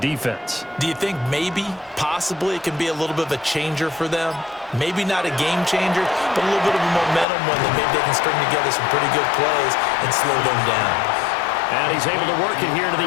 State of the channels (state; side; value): drops out; right; at 7.2 s